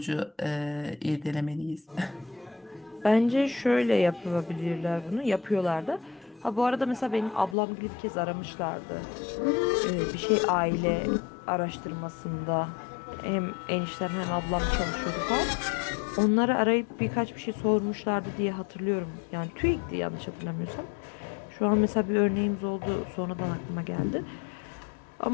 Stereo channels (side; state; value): right; drops out; at 7.6 s